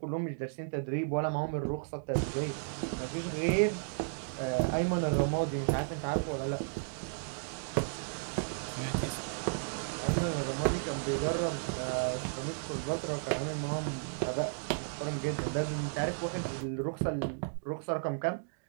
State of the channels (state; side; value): silent; left; digital silence